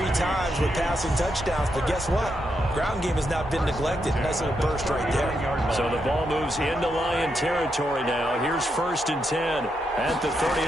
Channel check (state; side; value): normal; both; correlation 0.82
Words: times with passing touchdowns, but guess what? Ground game has not been neglected. Nice little burst right there. So the ball moves into Lion territory now. Here's 1st and 10 at the